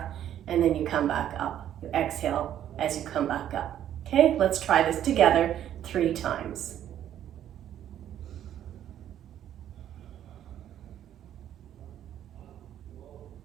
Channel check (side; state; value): left; quieter; 10.9 dB